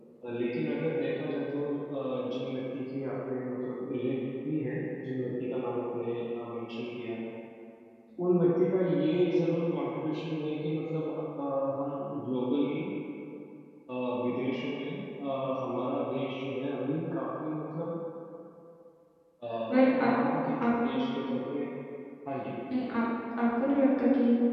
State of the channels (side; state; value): both; identical; correlation 1.00